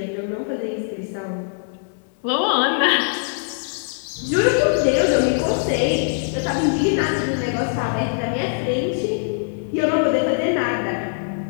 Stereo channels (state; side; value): silent; right; 64 dB below the other